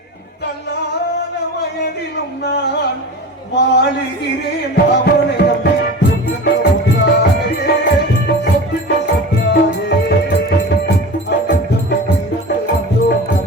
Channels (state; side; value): normal; both; correlation 0.33